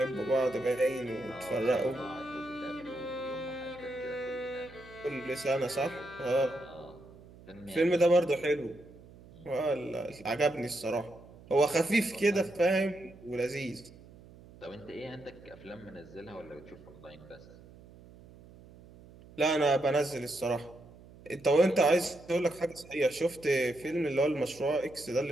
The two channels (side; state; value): right; noise; hum, 21 dB below the sound